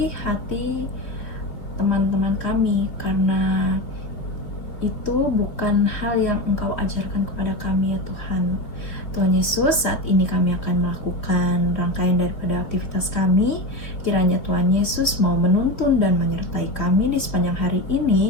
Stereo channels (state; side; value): late; right; 3.2 ms